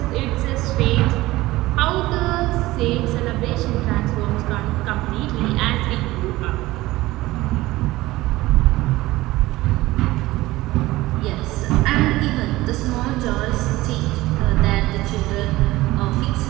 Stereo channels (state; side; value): quieter; left; 18.3 dB